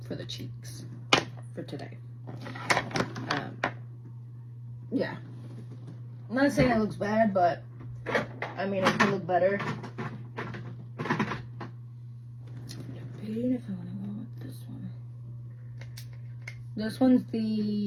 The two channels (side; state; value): both; identical; correlation 1.00